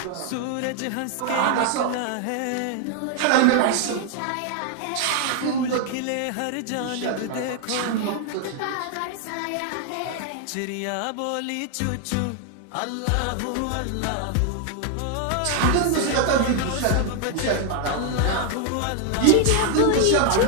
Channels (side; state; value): both; different; correlation 0.00